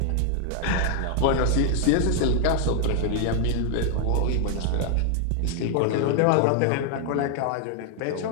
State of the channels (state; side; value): different; both; correlation 0.00